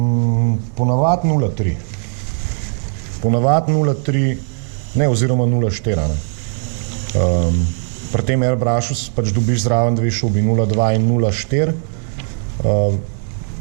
Ponavad 0,3. Ponavad 0,3, ne, oziroma 0,4. Pri tem airbrushu pač dobiš zraven dve šobi, 0,2 in 0,4.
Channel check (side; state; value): left; silent; 57 dB below the other